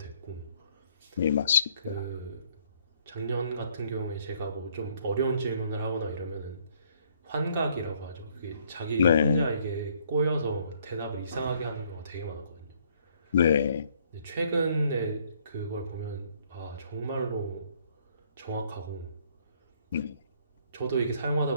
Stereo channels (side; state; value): both; inverted; correlation -0.65